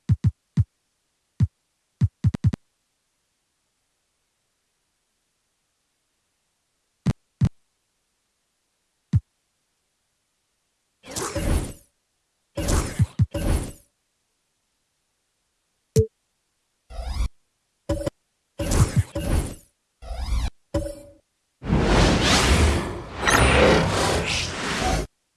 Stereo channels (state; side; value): identical; both; correlation 1.00